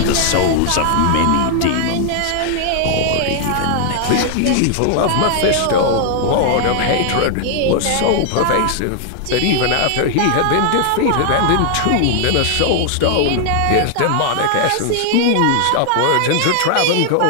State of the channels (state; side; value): different; both; correlation 0.00